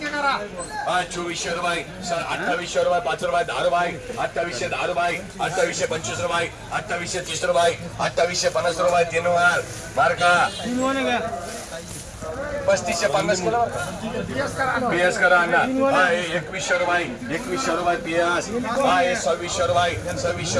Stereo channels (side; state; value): both; identical; correlation 1.00